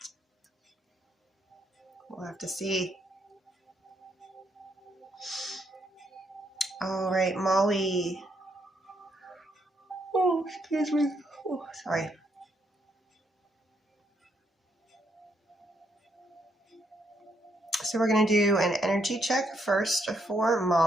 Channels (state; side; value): normal; both; correlation 0.75